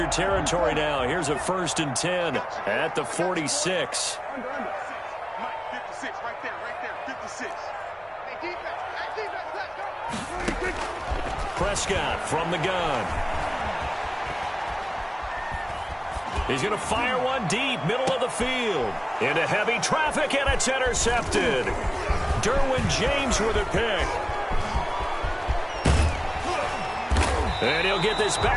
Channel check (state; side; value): identical; both; correlation 1.00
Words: territory now, here's a 1st and 10 at the 46. Mike, 56, right there, 56. Hey, defense, let's go. Prescott from the gun. He's going to fire one deep, middle of the field. Into heavy traffic, and it's intercepted. Derwin James with a pick. And he'll get this